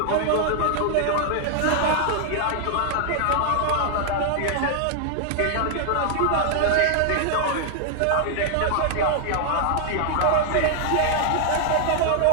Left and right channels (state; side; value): different; both; correlation -0.01